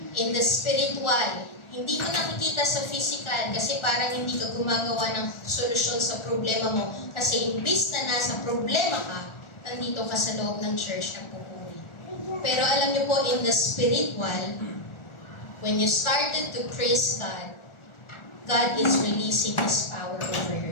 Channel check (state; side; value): late; right; 1.4 ms